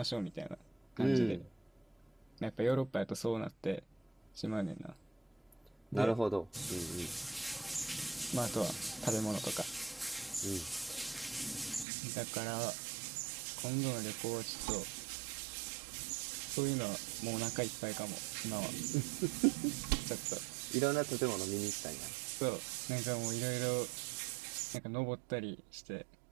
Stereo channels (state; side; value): drops out; left; at 11.9 s